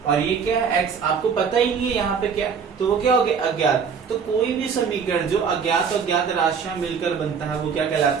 और ये क्या है? x। आपको पता ही नहीं है यहाँ पे क्या, तो वो क्या हो गया? अज्ञात। तो कोई भी समीकरण जो अज्ञात और ज्ञात राशियां मिलकर बनता है, वो क्या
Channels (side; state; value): left; quieter; 6.3 dB